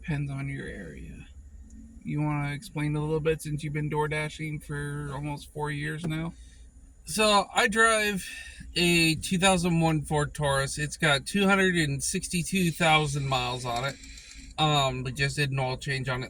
on your area. You want to explain a little bit since you've been door dashing for almost 4 years now? So I drive a 2001 Ford Taurus. It's got 262,000 miles on it. We just did an oil change on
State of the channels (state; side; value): identical; both; correlation 1.00